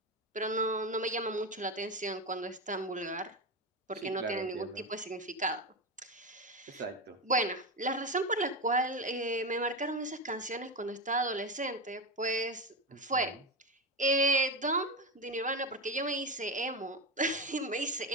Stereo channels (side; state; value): both; normal; correlation 0.17